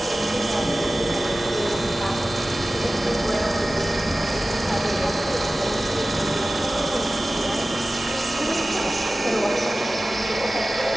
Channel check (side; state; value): both; normal; correlation 0.96